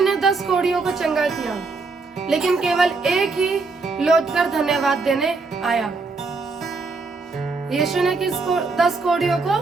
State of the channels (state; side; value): quieter; left; 4.0 dB